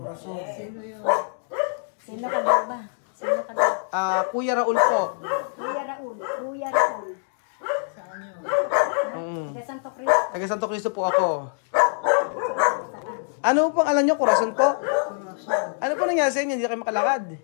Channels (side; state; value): right; silent; digital silence